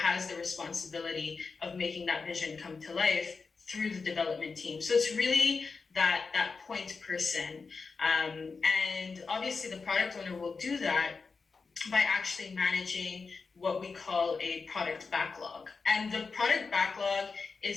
the responsibility of making that vision come to life through the development team. So it's really that point person. And obviously the product owner will do that by actually managing what we call a product backlog. And the product backlog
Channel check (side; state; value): right; quieter; 4.7 dB